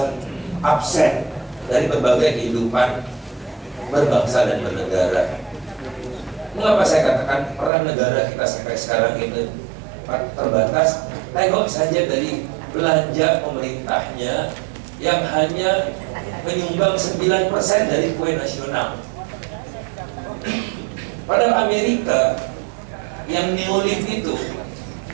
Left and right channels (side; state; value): left; drops out; at 7.7 s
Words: absen dari berbagai kehidupan berbangsa dan bernegara. Mengapa saya katakan peran negara kita sampai sekarang itu terbatas? Tengok saja dari belanja pemerintahnya yang hanya menyumbang 9% dari kue nasional. Padahal Amerika yang neolib itu,